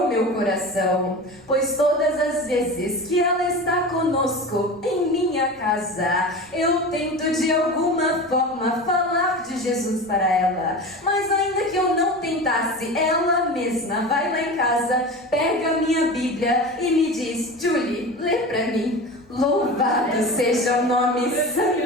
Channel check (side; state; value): right; noise; rumble, 29 dB below the sound